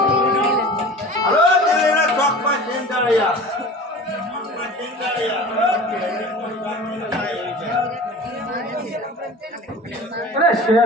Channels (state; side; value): normal; both; correlation 0.38